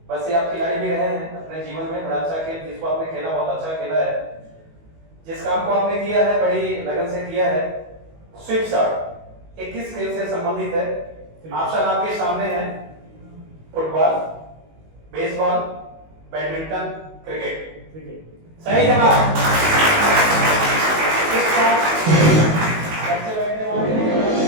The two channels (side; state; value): left; late; 19 ms